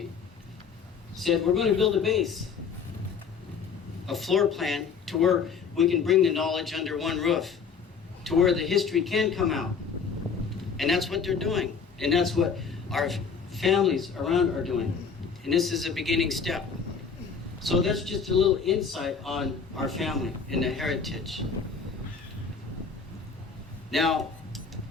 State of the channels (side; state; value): right; quieter; 5.9 dB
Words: said, we're going to build a base, a floor plan to where we can bring the knowledge under one roof, to where the history can come out. And that's what they're doing. And that's what our families around are doing. And this is a beginning step. So that's just a little insight on our family and the heritage. Now,